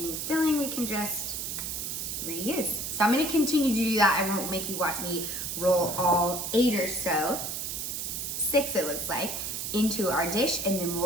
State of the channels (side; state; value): right; noise; hiss, 4 dB below the sound